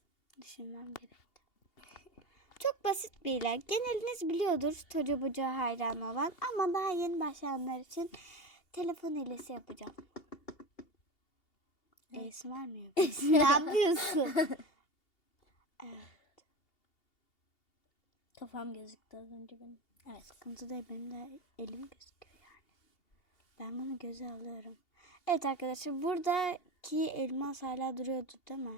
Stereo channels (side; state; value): right; late; 2.8 ms